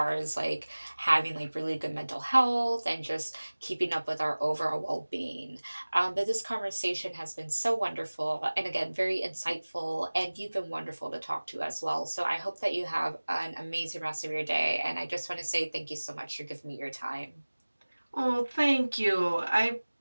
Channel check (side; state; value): both; inverted; correlation -1.00